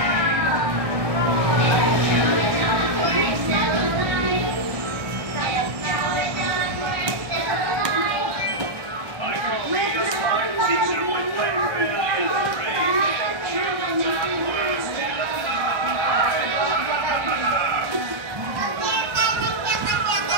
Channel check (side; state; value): left; late; 1.1 ms